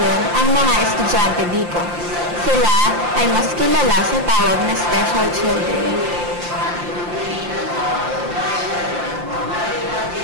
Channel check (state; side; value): late; left; 5.7 ms